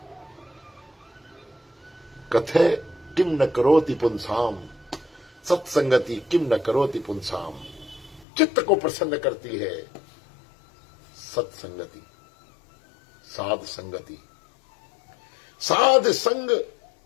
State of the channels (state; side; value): drops out; right; at 8.2 s